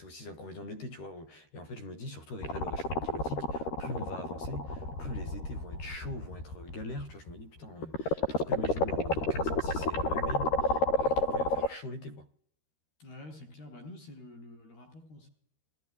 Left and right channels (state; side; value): late; right; 13 ms